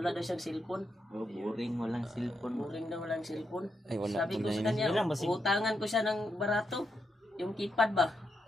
daw siyang cellphone. Oh, boring walang cellphone. Boring daw walang cellphone. Ay wala Sabi po ko na sa yun. kanya, Ilang ba si- utangan ko siya ng barato. Yung keypad ba?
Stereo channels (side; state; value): both; normal; correlation 0.83